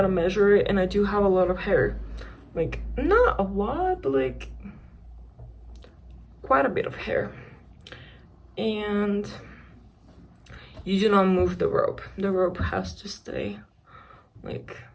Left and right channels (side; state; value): both; identical; correlation 1.00